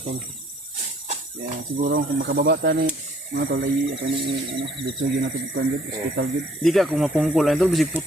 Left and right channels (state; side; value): normal; both; correlation 0.61